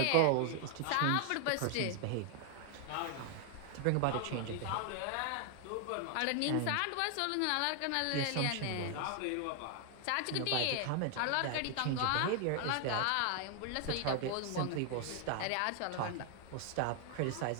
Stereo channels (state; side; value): different; both; correlation 0.00